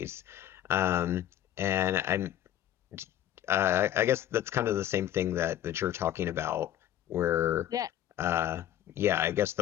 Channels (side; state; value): right; quieter; 11.8 dB